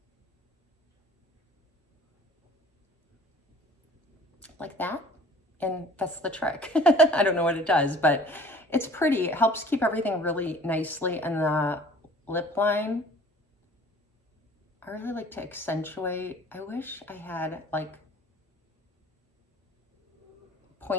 Like that. And that's the trick. I don't know what it does, but it's pretty. It helps keep everything really nicely in the lip line. I really like to accentuate. I wish I had like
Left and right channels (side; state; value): both; normal; correlation 0.49